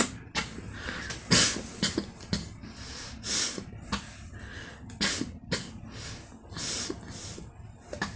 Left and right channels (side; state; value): both; identical; correlation 1.00